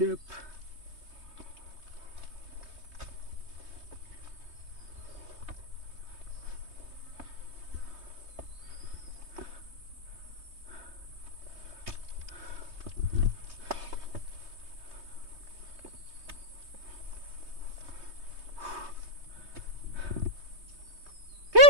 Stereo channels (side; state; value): left; late; 3.2 ms